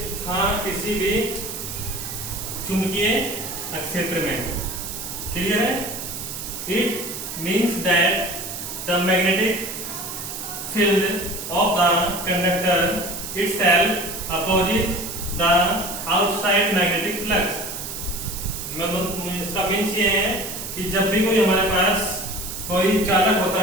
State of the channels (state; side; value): noise; right; hiss, 7 dB below the sound